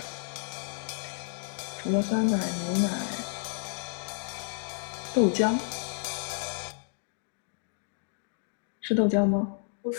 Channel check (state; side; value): silent; right; digital silence